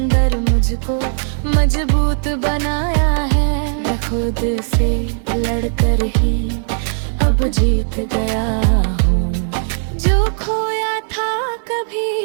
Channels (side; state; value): left; silent; digital silence